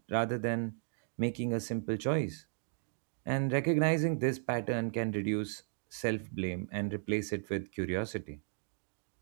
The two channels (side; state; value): left; silent; digital silence